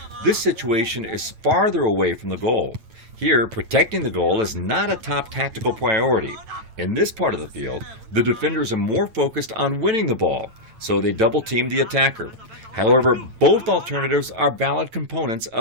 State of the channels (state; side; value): late; left; 8.9 ms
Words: this situation is farther away from the goal. Here, protecting the goal is not a top tactical priority. In this part of the field, the defenders are more focused on winning the ball, so they double team the attacker. However, both alternatives are valid components